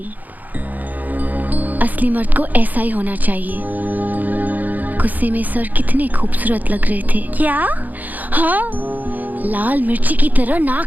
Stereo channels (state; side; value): late; left; 0.082 ms